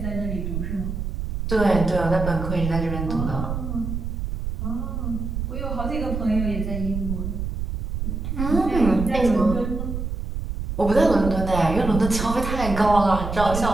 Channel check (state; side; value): noise; right; rumble, 4 dB below the sound